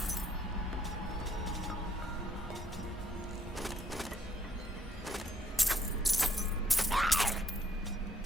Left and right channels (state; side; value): normal; both; correlation 0.68